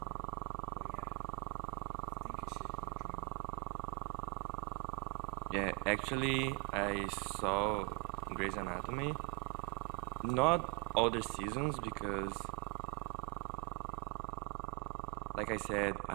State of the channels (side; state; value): left; quieter; 29.5 dB